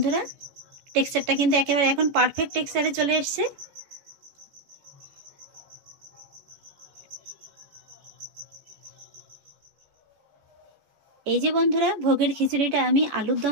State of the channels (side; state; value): left; late; 14 ms